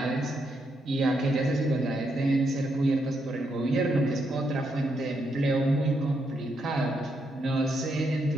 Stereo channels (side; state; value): both; normal; correlation 0.79